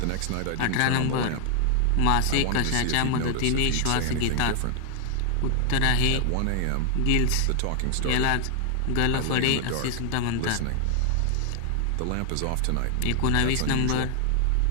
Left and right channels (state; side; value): different; both; correlation 0.00